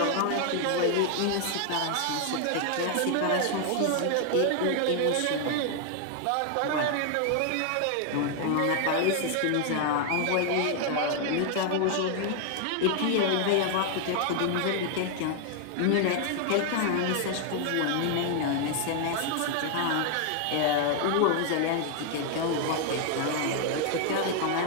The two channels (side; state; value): both; different; correlation 0.00